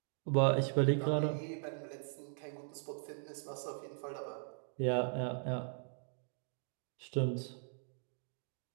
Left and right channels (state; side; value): silent; left; digital silence